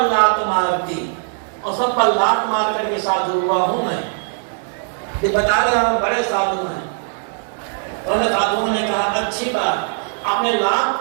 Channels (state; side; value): silent; left; digital silence